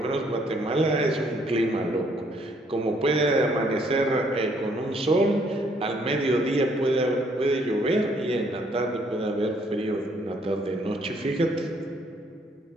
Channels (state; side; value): normal; both; correlation 0.66